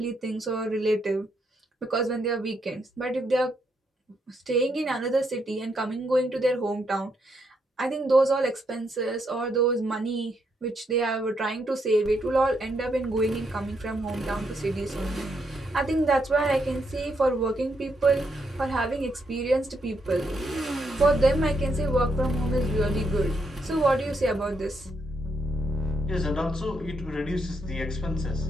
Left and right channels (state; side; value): normal; both; correlation 0.78